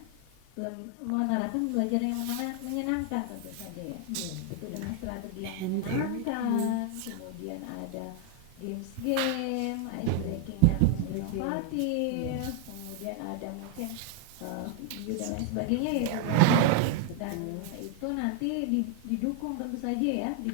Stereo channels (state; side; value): different; both; correlation 0.00